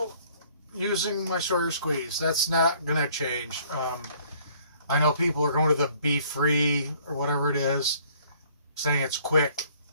using my Sawyer Squeeze. That's not going to change. I know people are going to the Be Free or whatever it is, saying it's quick.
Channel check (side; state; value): both; inverted; correlation -0.59